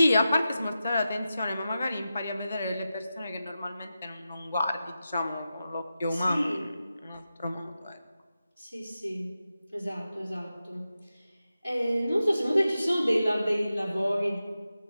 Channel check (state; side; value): inverted; both; correlation -0.92